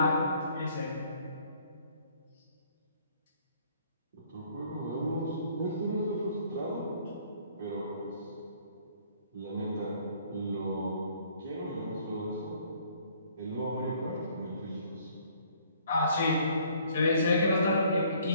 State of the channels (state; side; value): inverted; both; correlation -0.60